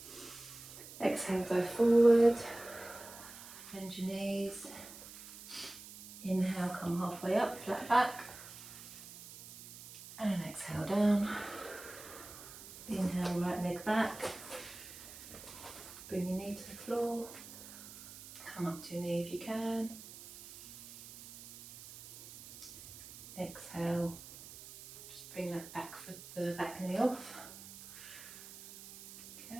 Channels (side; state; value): right; noise; hiss, 15 dB below the sound